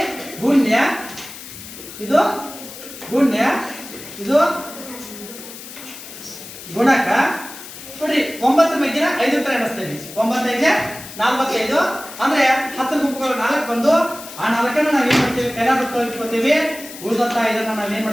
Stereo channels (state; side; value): noise; left; hiss, 14 dB below the sound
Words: ಗುಣ್ಯ, ಇದು ಗುಣ್ಯ, ಇದು ಗುಣಕ. ನೋಡಿ, 9 ಮಗ್ಗಿನ 5 ತರ ಎಣಿಸ್ತೇವೆ. 9 5 45 ಅಂದ್ರೆ 10 ಗುಂಪುಗಳು 4 ಬಂದು ಆ 4ಅನ್ನು ನಾವ್ ಏನ್ ಮಾಡ್ತೀವಿ, ಕೈಲಾಗುತ್ತೋ ಇಟ್ಕೋತೀವಿ. ಉಳಿದಂತ ಇದನ್ನ ನಾವ್ ಏನ್